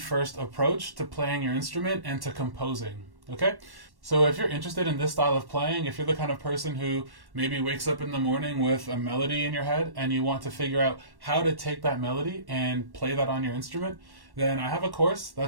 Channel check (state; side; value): late; left; 1.1 ms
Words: approach to playing your instrument and to composing. Okay? So if you're interested in this style of playing, if you're the kind of person who maybe wakes up in the morning with a melody in your head and you want to figure out how to take that melody and play that on your instrument, then I have a course